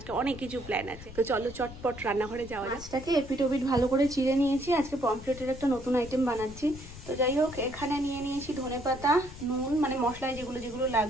অনেক কিছু প্ল্যান আছে। তো চলো চটপট রান্নাঘরে যাওয়া যাক। মাছটাকে এপিট ওপিট ভালো করে চিড়ে নিয়েছি, আজকে পমফ্রেটের একটা নতুন আইটেম বানাচ্ছি। তো যাই হোক, এখানে নিয়ে নিয়েছি ধনেপাতা, নুন, মানে মশলায় যেগুলো যেগুলো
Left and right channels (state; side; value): noise; left; rumble, 15 dB below the sound